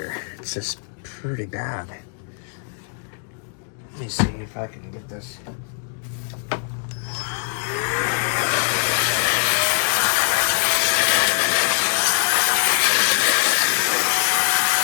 It's just pretty bad. Let me see if I can get this.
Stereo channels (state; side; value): silent; right; 56 dB below the other